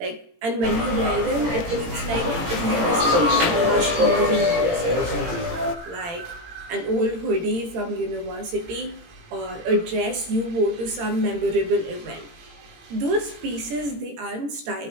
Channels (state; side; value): late; left; 18 ms